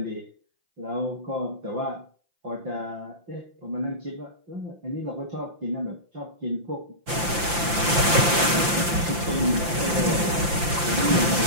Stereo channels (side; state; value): left; late; 5.8 ms